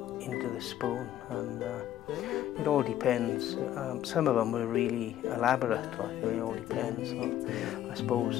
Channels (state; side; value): quieter; right; 12.1 dB